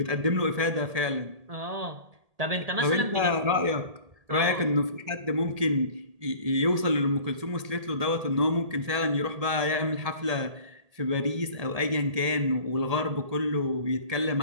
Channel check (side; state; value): left; late; 1.8 ms